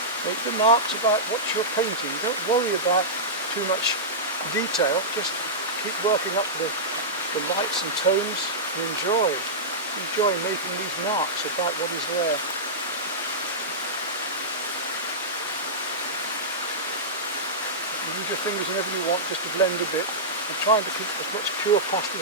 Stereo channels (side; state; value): both; normal; correlation -0.13